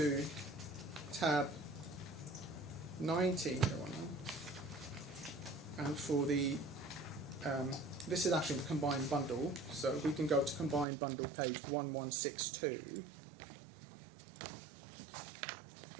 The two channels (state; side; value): drops out; left; at 10.9 s